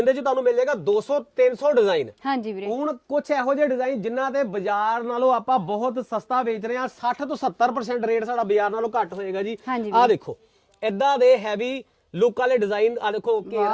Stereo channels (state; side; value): identical; both; correlation 1.00